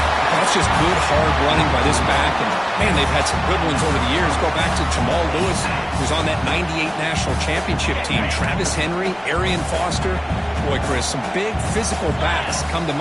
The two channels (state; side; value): identical; both; correlation 1.00